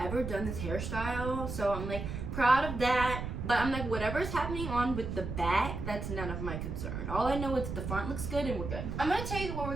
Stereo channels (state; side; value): noise; right; rumble, 5 dB below the sound